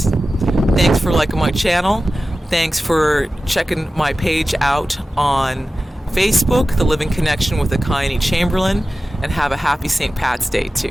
Thanks for liking my channel. Thanks for checking my page out on Facebook, The Living Connection with Ekayani Chamberlin. And have a happy St. Pat's Day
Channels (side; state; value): both; normal; correlation 0.95